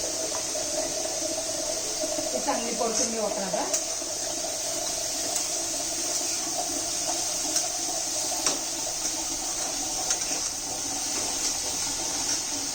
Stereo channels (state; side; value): identical; both; correlation 1.00